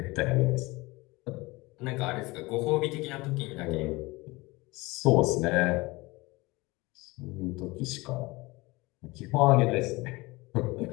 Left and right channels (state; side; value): quieter; right; 22.6 dB